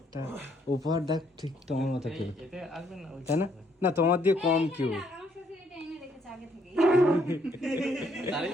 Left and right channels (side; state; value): both; normal; correlation 0.69